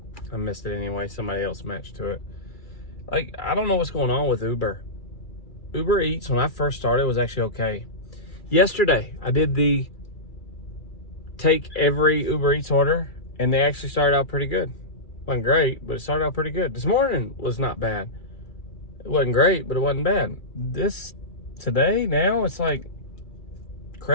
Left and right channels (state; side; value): late; right; 2.3 ms